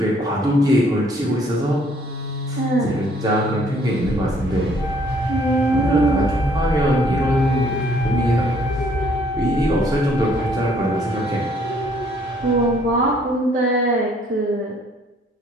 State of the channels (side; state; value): both; normal; correlation 0.63